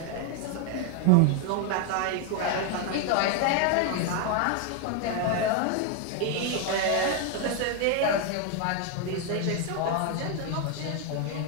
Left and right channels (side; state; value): both; different; correlation 0.01